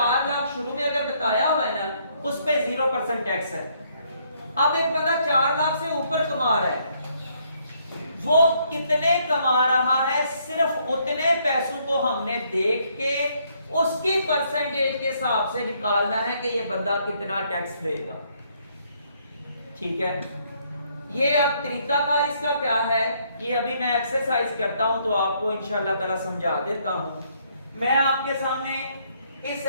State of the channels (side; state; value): both; inverted; correlation -0.69